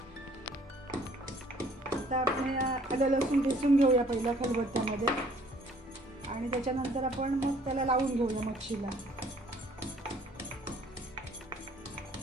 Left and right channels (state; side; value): normal; both; correlation 0.59